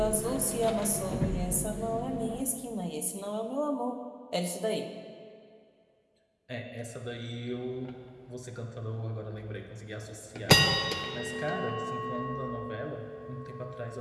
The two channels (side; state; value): both; identical; correlation 1.00